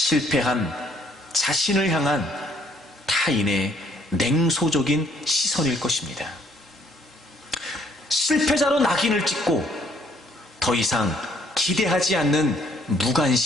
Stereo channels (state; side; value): normal; both; correlation 0.64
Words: 자신을 향한 타인의 냉소적인 시선일 것입니다. 실패자로 낙인을 찍고 더 이상 기대하지 않는